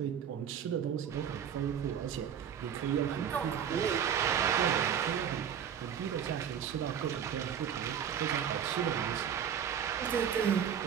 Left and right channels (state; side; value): quieter; left; 8.5 dB